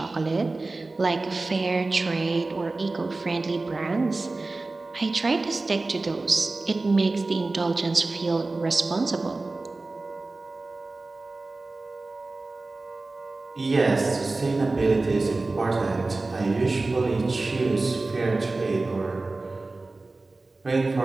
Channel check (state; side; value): quieter; left; 3.3 dB